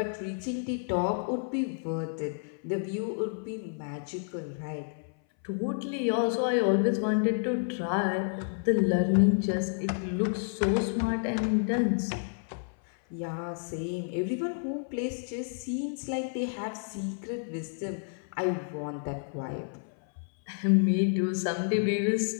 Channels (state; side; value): silent; right; 58 dB below the other